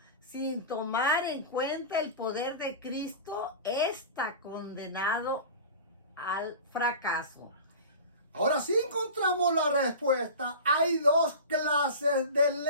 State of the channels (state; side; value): inverted; both; correlation -0.33